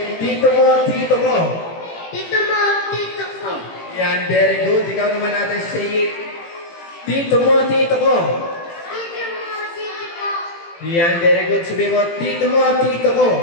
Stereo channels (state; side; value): late; right; 18 ms